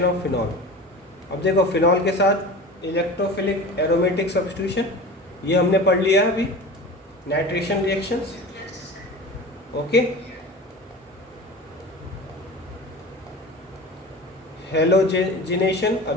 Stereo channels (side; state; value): both; normal; correlation 0.34